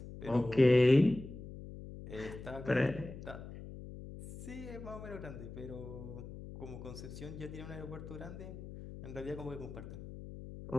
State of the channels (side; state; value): left; noise; hum, 12 dB below the sound